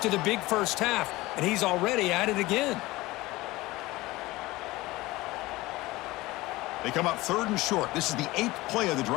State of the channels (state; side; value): quieter; right; 19.6 dB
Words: the big first half, and he's already at it again. They come up 3rd and short. This is the 8th play of the